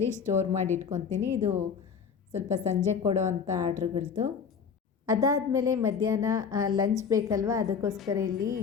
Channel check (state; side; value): quieter; right; 6.3 dB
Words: ಸ್ಟೋರ್ ಮಾಡಿ ಇಟ್ಕೊತೀನಿ. ಇದು ಸ್ವಲ್ಪ ಸಂಜೆ ಕೊಡೋ ಅಂಥ ಆರ್ಡ್ರ್ಗಳದ್ದು. ಅದಾದಮೇಲೆ ಮಧ್ಯಾಹ್ನ ಲಂಚ್ ಬೇಕಲ್ವ, ಅದಕ್ಕೋಸ್ಕರ ಇಲ್ಲಿ